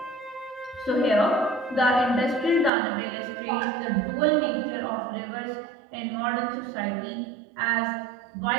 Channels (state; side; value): drops out; left; at 2.7 s